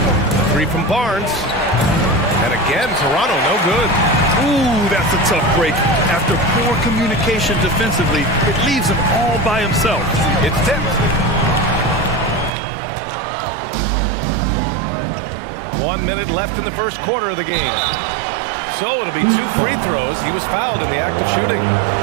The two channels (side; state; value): left; drops out; at 12.5 s